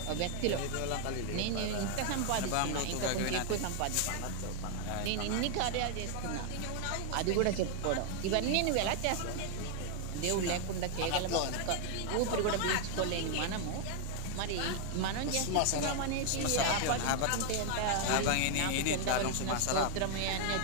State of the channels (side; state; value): both; different; correlation 0.00